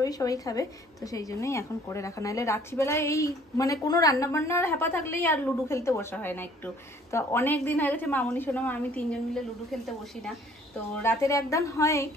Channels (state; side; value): normal; both; correlation 0.56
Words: সবাই খাবে, তো সেই জন্যই এখন করে রাখা। নাহলে রাত্রিবেলায় এই মানে কোনো রান্না বান্নার হ্যাপা থাকলেই আর লুডো খেলতে বসা হয় না একটু। তো অনেক দিন হয়ে গেছে মামনি সোনা আমি তিনজন মিলে লুডো খেলতে বসি না। তো রাতের একদান হয়,